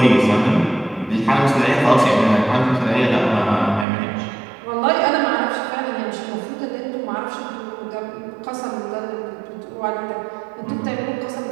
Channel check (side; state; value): left; drops out; at 3.9 s